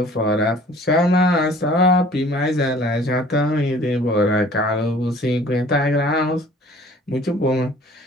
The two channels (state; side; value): normal; both; correlation 0.51